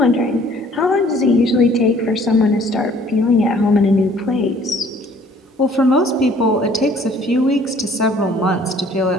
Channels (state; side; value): normal; both; correlation 0.56